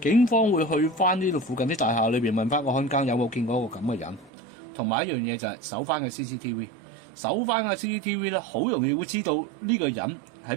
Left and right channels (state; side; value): drops out; left; at 4.3 s